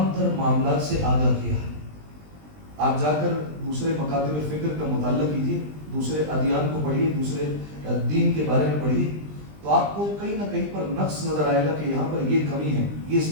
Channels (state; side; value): late; left; 20 ms